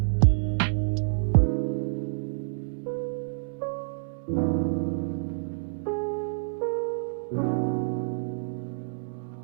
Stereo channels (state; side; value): silent; left; 59 dB below the other